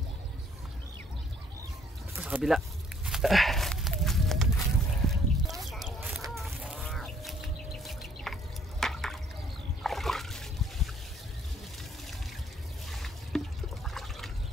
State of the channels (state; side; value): normal; both; correlation 0.63